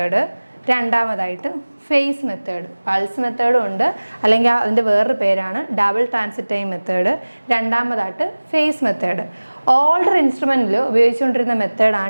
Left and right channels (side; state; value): both; inverted; correlation -1.00